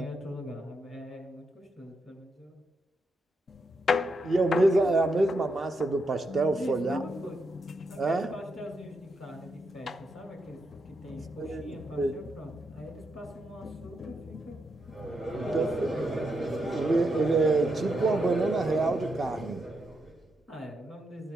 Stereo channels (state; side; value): normal; both; correlation 0.82